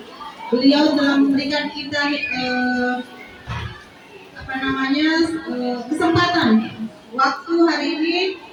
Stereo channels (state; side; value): identical; both; correlation 1.00